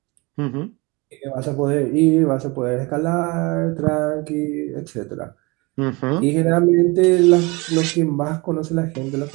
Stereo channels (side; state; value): left; quieter; 26.0 dB